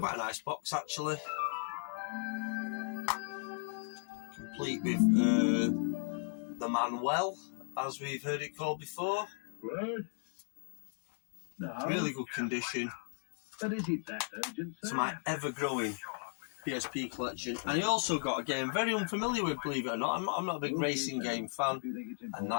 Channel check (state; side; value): silent; right; 54 dB below the other